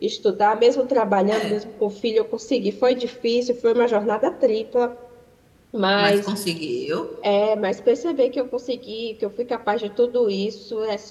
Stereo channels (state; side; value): identical; both; correlation 1.00